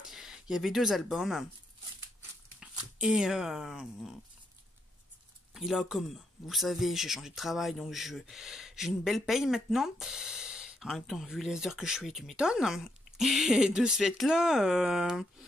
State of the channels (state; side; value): normal; both; correlation 0.78